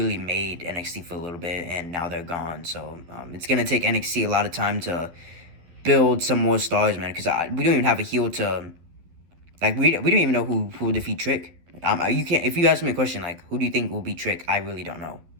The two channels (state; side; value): late; left; 12 ms